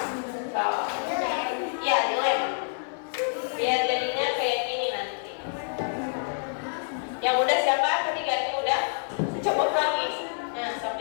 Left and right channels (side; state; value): right; silent; digital silence